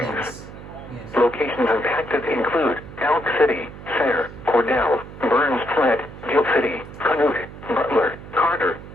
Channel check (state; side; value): noise; right; hum, 14 dB below the sound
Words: Locations impacted include Elk City, Sayre, Cordell, Burns Flat, Gill City, Canute, Butler, Carter,